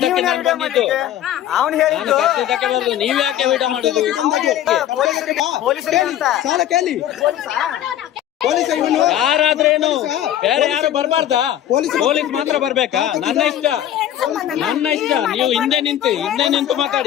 ನಾನು ಬಂದಿದ್ದು. ಅವನು ಹೇಳಿದ್ದು ಕರ್ದಿದ್ದಕ್ಕೆ ಬಂದು ನೀವ್ ಯಾಕೆ ವಿಡಿಯೋ ಮಾಡುದು? ಪೊಲೀಸರಿಗೆ ಅಂತ. ಸಾಲ ಕೇಳಿ ಪೊಲೀಸ್ ಇವನು ಯಾರಾದ್ರೇನು ಬೇರೆ ಯಾರು ಬರ್ಬಾರ್ದಾ? ಪೊಲೀಸ್ ಮಾತ್ರ ಬರ್ಬೇಕಾ? ನನ್ನ ಇಷ್ಟ. ನೀವು ಹಿಂದೆ ನಿಂತು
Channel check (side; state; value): right; quieter; 11.6 dB